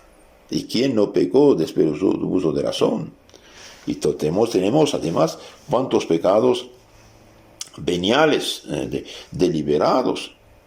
¿Y quién no pecó después de uso de razón? Y tenemos además cuantos pecados veniales, deliberados.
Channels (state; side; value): identical; both; correlation 1.00